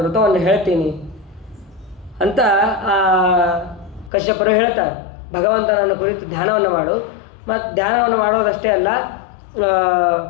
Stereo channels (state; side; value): drops out; right; at 4.1 s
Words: ವ್ರತವನ್ನು ಹೇಳ್ತೀನಿ ಅಂತ ಕಶ್ಯಪರು ಹೇಳ್ತಾರೆ. ಭಗವಂತನನ್ನು ಕುರಿತು ಧ್ಯಾನವನ್ನು ಮಾಡು. ಮತ್ತು ಧ್ಯಾನವನ್ನು ಮಾಡೋದಷ್ಟೇ ಅಲ್ಲ,